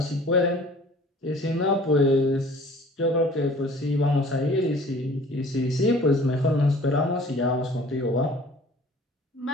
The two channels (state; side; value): normal; both; correlation 0.49